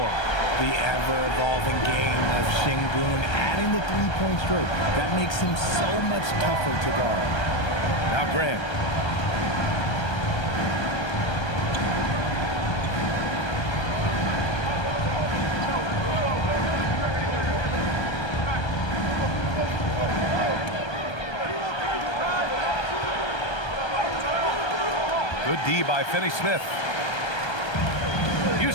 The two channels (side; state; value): right; late; 1.3 ms